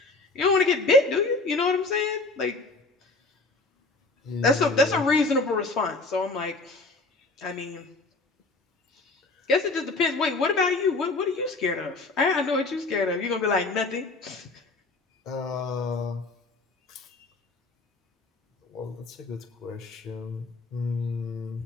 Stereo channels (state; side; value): quieter; right; 3.4 dB